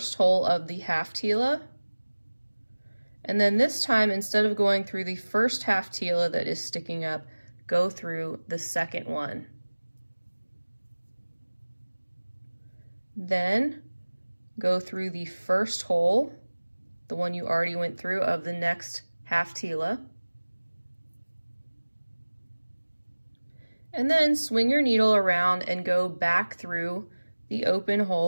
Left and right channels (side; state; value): both; inverted; correlation -1.00